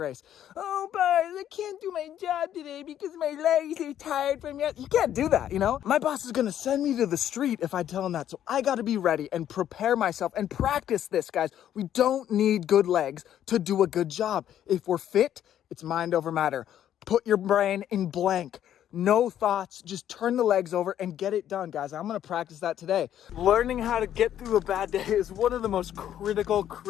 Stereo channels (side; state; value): right; quieter; 10.8 dB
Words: Oh, boss, I can't do my job today because my legs are tired from yet. You can't do that, you know? My boss is gonna send me to the street if I tell him that. So I gotta be ready and prepare myself and practice this, guys. We don't need good legs to do a good job. If we're fit, it's mind over matter. Put your brain in blank. No thoughts, just turn the legs over and get it done, guys. I'm gonna practice that today. Learning how to get through a bad day is one of the most